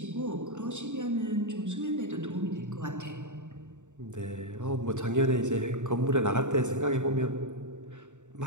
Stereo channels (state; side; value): late; left; 0.85 ms